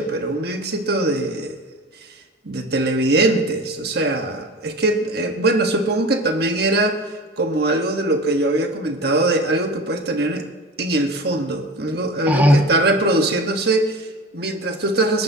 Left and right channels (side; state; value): both; normal; correlation 0.33